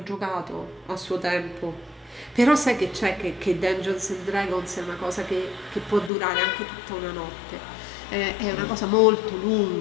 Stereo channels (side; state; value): right; drops out; at 6.1 s